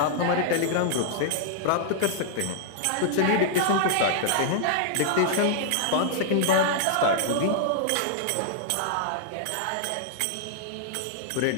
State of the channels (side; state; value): both; different; correlation -0.01